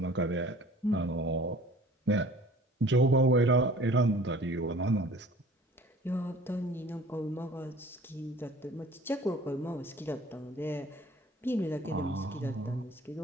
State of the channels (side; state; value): both; normal; correlation 0.48